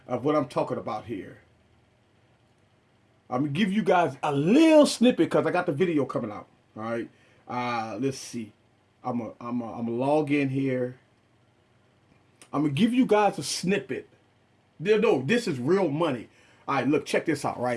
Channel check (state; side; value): identical; both; correlation 1.00